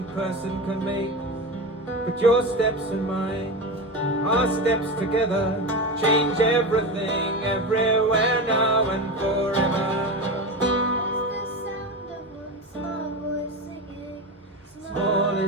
person can make. But your steps and mine, our steps together, change everything, everywhere, now and forever. Small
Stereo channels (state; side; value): normal; both; correlation 0.22